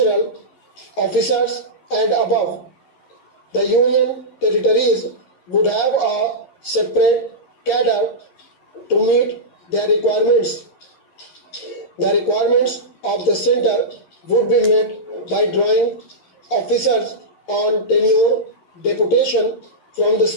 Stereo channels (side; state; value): right; late; 11 ms